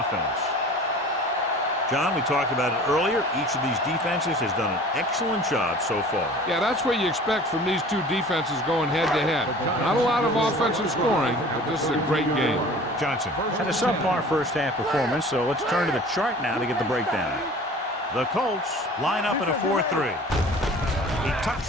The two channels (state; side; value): normal; both; correlation 0.44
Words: John, we talked about it earlier. Each of these defenses has done an excellent job so far. Yeah, that's what you expect from these two defenses going head-to-head. Not a lot of offensive scoring, but this is a great game. Johnson. Had a subpar first half performance, so let's turn to the chart now to get the breakdown. The Colts line up in a 4-3. He tucks